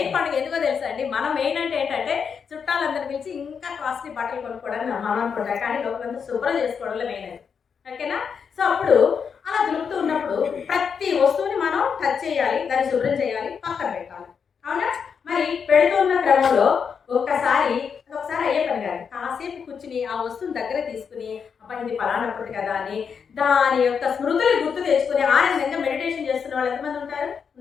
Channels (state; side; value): quieter; right; 6.5 dB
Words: పండుగ ఎందుకో తెలుసా అండి? మనం మెయిన్ అంటే ఏంటంటే చుట్టాలందరూ పిలిచి ఇంకా కాస్ట్లీ బట్టలు కొనుక్కోవడానికి మనం అనుకుంటాం, కానీ లోపలంతా శుభ్రం చేసుకోవడంలో మెయిన్ అది. ఓకేనా? సో అప్పుడు అలా దులుపుతూ ఉన్నప్పుడు ప్రతి వస్తువుని మనం టచ్ చేయాలి, దాన్ని శుభ్రం చేయాలి, పక్కన పెట్టాలి, అవునా? మరి పెడుతున్న క్రమంలో ఒకసారి అయ్యే పని కాదు, కాసేపు కూర్చుని ఆ వస్తువుని దగ్గర తీసుకుని అబ్బా ఇది పలానప్పుడు కదా అని దాని యొక్క స్మృతులు గుర్తు తెచ్చుకుని ఆనందంగా మెడిటేషన్ చేస్తున్న వాళ్ళు ఎంతమంది